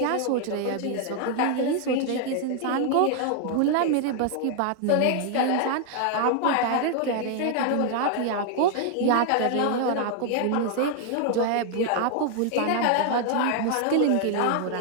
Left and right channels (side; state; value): both; different; correlation 0.00